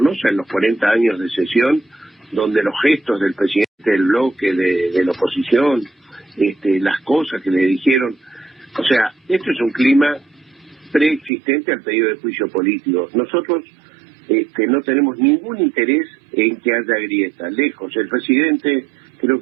en los 40 años de sesión, donde los gestos del presidente del bloque de la oposición, las cosas que le dijeron, o sea, esto es un clima preexistente al pedido de juicio político. Nosotros no tenemos ningún interés en que haya grieta, lejos. El presidente creo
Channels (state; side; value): drops out; left; at 11.3 s